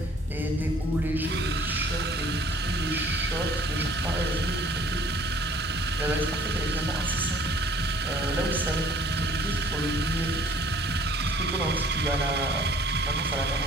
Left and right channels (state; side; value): normal; both; correlation 0.55